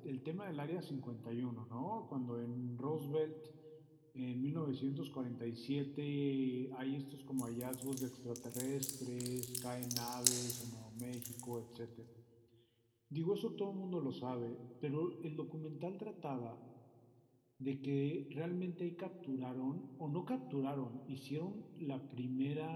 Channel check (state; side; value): identical; both; correlation 1.00